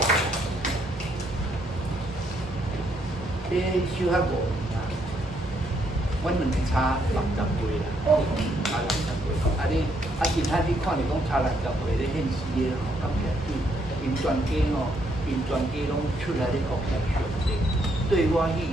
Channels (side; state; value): both; normal; correlation 0.73